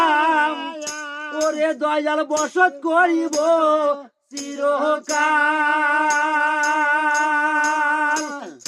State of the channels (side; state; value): both; identical; correlation 1.00